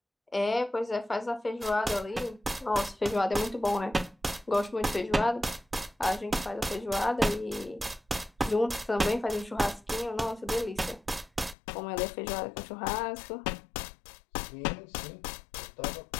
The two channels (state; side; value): drops out; right; at 11.6 s